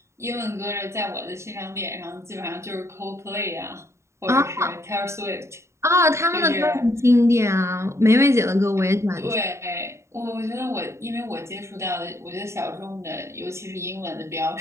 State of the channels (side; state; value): left; late; 0.14 ms